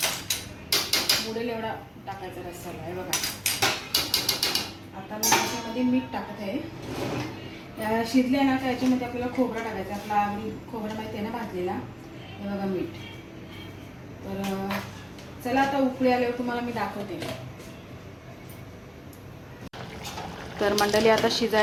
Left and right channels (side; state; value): both; identical; correlation 1.00